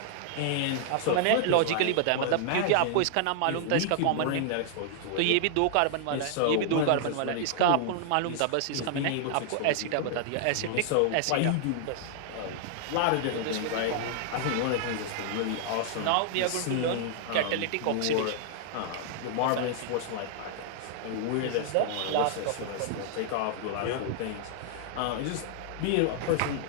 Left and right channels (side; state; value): both; different; correlation -0.01